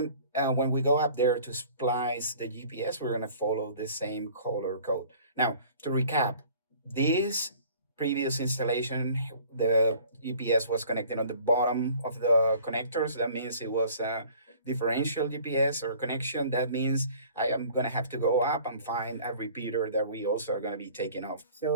when we go up there to splice the GPS, we're going to follow the same color code. Now, to recap, this previous installation, the GPS was connected on the bottom of the connectors. That means it was differential GPS or connection, that means I am going to have to go up and find a repeater that we also are going to be taking off.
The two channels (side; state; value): both; inverted; correlation -0.50